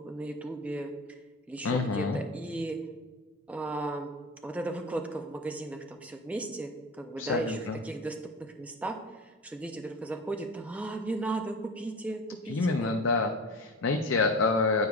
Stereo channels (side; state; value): both; normal; correlation 0.31